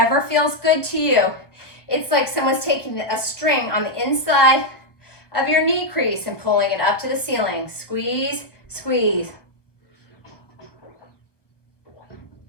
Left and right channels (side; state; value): right; late; 1.1 ms